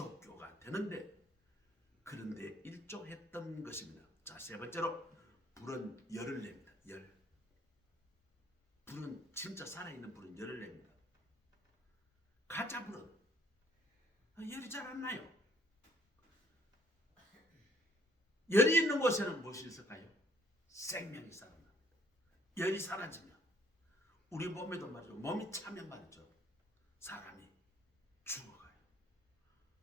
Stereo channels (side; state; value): both; normal; correlation 0.62